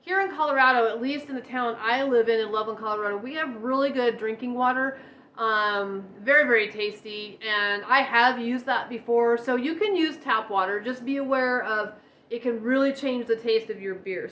in Colorado, at least in the town I live in Loveland, Colorado, we have really good drinking water. Very, very tasty, and I have used that before. So you can use tap water. Just be aware of it can really change the taste of your beer.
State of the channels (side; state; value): both; identical; correlation 1.00